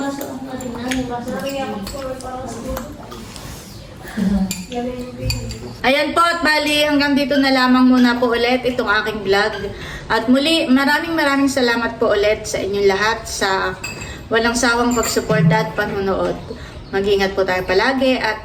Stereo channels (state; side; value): identical; both; correlation 1.00